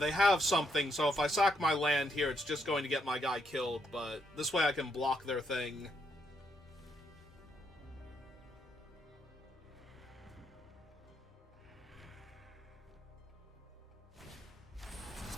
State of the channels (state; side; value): normal; both; correlation 0.76